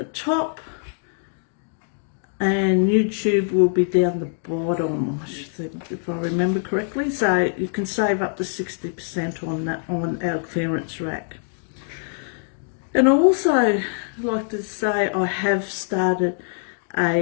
top, and YouTube will be down the bottom, I should think, if I remember correctly. So you can save up to 60% on that, on our clearance rack. And I also like to say I have started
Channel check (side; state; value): right; silent; digital silence